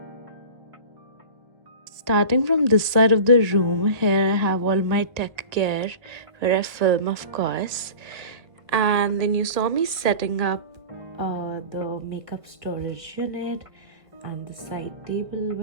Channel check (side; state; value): left; late; 1.5 ms